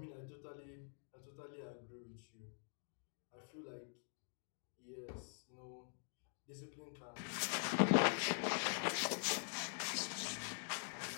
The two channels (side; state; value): right; silent; digital silence